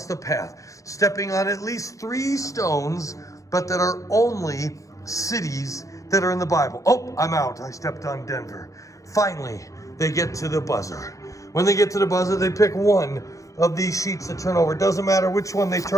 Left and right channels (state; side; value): late; right; 0.16 ms